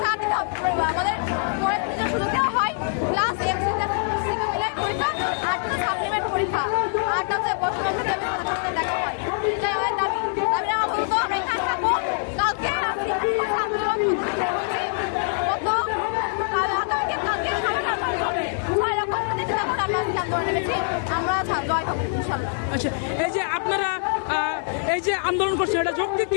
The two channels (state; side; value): silent; right; digital silence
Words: দিতে হবে, আমাদের পরের দিনের সুযোগ দেওয়া হয়, প্লাস এমসিকিউ প্লাস সিকিউ মিলাই পরীক্ষা, আরটা সাপ্লিমেন্ট পরীক্ষা, আরটা হচ্ছে বর্তমান দেখা হয়। এটাই আমার দাবি। দাবি আমার বলতো আমরা এখানে থাকবো, কালকে আচ্ছা, এই যে আপনারা এই যে আন্দোলন করছেন, এটা যৌক্তিক